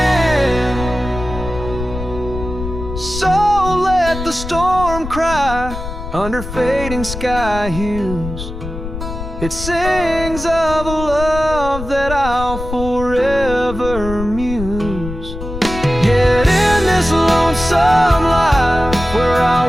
So let the storm cry under fading sky hues. It sings of a love that I'll forever muse. Yet in this lonesome life where I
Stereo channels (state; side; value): noise; left; rumble, 8 dB below the sound